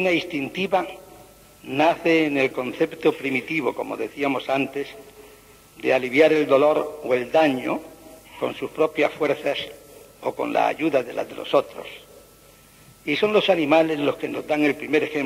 instintiva nace en el concepto primitivo, como decíamos antes, de aliviar el dolor o el daño con sus propias fuerzas o con la ayuda de las de los otros. Y son los animales los que nos dan el primer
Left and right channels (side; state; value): both; identical; correlation 1.00